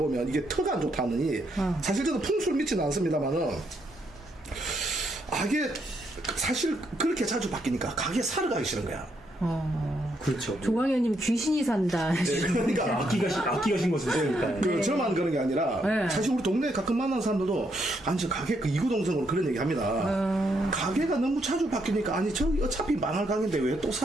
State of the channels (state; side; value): normal; both; correlation 0.76